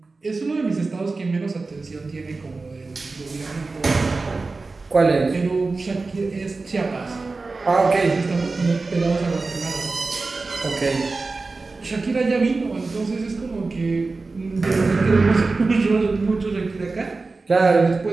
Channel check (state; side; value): quieter; left; 3.8 dB